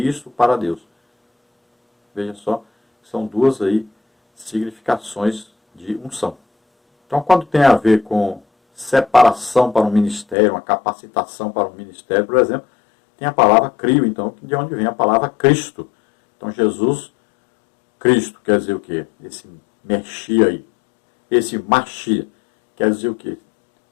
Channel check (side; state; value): right; drops out; at 10.4 s